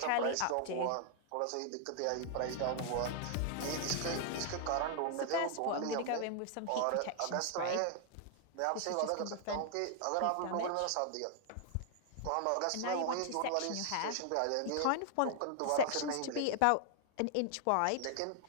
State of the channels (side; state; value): both; different; correlation 0.00